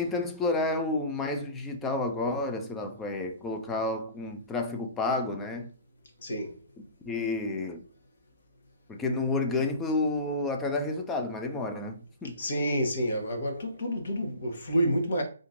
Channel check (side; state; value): both; inverted; correlation -0.35